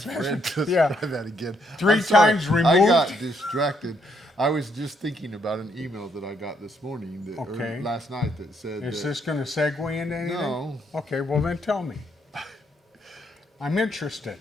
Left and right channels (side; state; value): both; normal; correlation 0.73